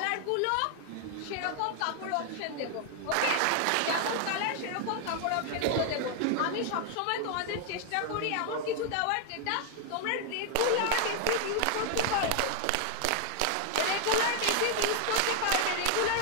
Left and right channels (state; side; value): different; both; correlation 0.00